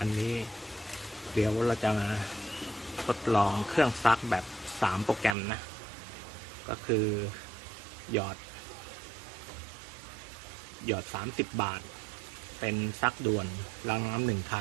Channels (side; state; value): left; drops out; at 5.4 s